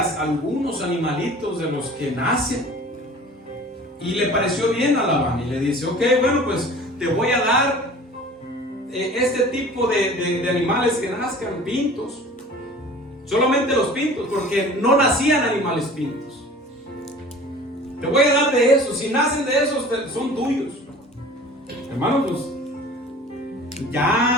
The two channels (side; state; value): both; normal; correlation 0.44